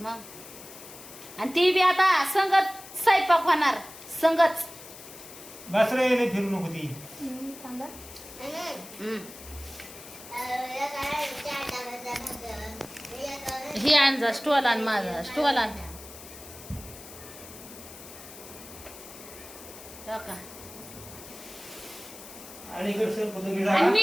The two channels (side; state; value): left; noise; hiss, 16 dB below the sound